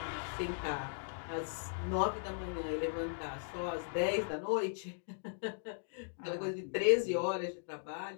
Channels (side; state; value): right; silent; digital silence